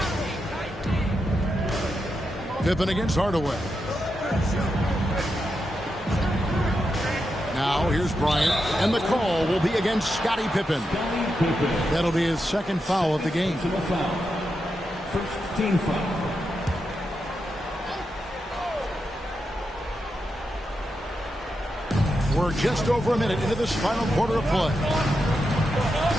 Pippen against Hardaway. Now here's Bryant, and the call will be against Scottie Pippen. That'll be his 2nd foul of the game. First team foul. We're just over a minute into this final quarter of play.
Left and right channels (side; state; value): both; normal; correlation 0.86